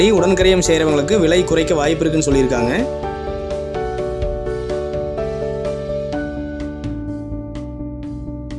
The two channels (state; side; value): identical; both; correlation 1.00